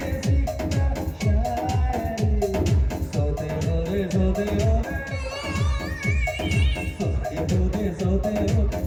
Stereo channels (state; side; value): identical; both; correlation 1.00